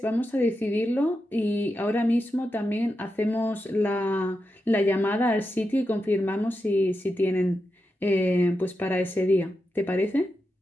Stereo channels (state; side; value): normal; both; correlation 0.88